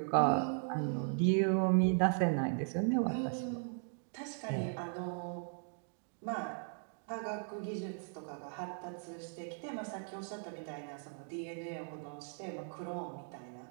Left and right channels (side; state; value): left; silent; 52 dB below the other